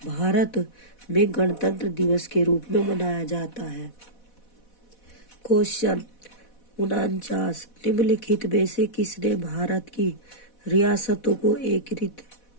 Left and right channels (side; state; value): right; late; 4.1 ms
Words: भारत में गणतंत्र दिवस के रूप में मनाया जाता है। क्वेश्चन 49, निम्नलिखित में से किसने भारत की रियासतों को